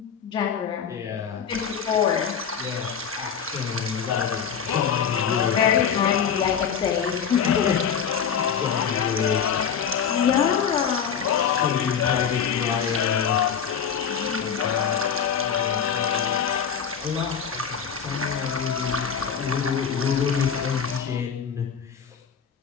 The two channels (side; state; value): right; quieter; 7.3 dB